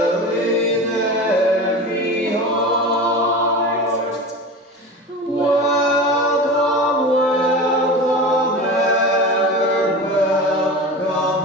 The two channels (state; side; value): normal; both; correlation 0.30